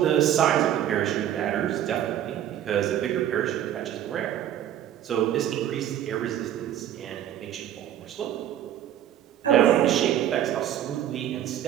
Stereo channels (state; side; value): quieter; left; 11.2 dB